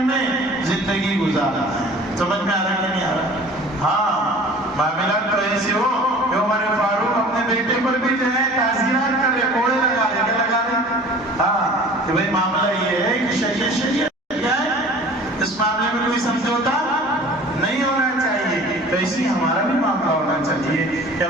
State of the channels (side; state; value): both; normal; correlation 0.45